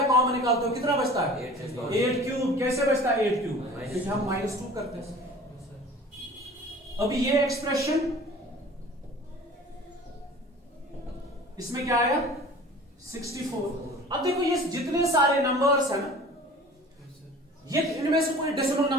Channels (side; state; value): both; normal; correlation 0.43